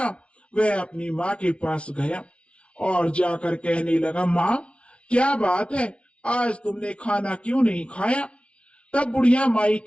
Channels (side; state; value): right; late; 0.060 ms